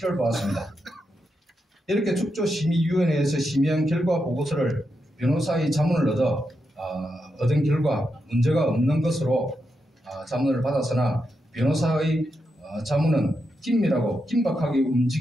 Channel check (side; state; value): both; normal; correlation 0.85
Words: 보았습니다. 이렇게 축조심의위원회에서 심의한 결과 보고서를 변호사의 자문을 얻은 결과 문제가 없는 것으로 자문을 받았으나 변호사의 자문은 긴밀하고 긴박하게